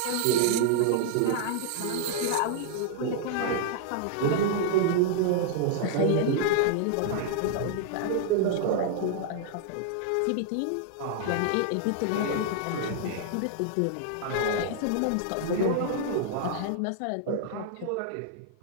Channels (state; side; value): different; both; correlation -0.01